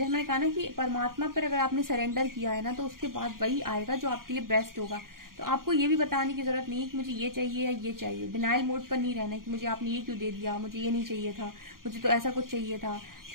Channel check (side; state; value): left; late; 0.91 ms